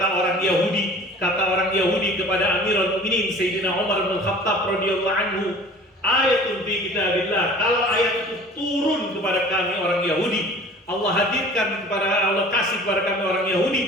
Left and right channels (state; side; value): normal; both; correlation 0.45